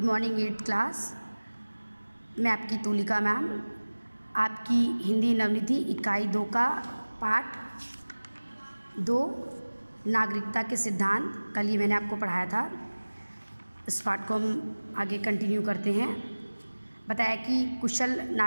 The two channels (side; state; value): both; inverted; correlation -1.00